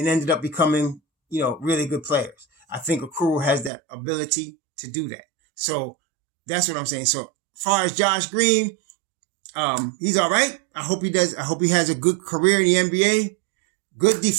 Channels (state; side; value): drops out; left; at 3.7 s